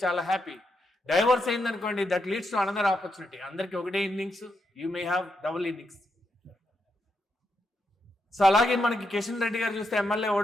చాలా హ్యాపీ. డైవర్స్ అయింది అనుకోండి, that leads to another opportunity. అందరికి ఒకటే innings, you may have double innings. So అలాగే మనకి కిషన్ రెడ్డి గారు చూస్తే ఎమ్మెల్యే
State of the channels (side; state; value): both; normal; correlation 0.82